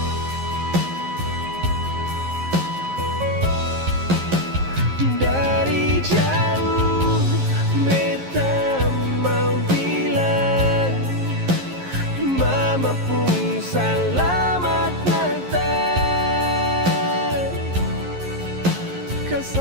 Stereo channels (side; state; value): left; late; 11 ms